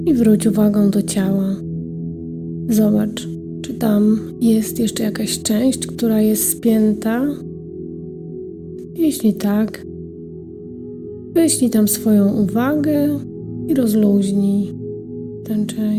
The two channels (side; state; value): both; identical; correlation 1.00